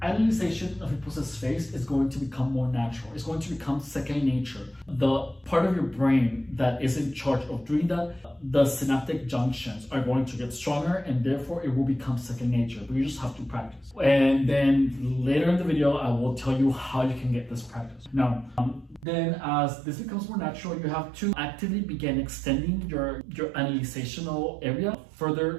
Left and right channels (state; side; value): drops out; left; at 19.1 s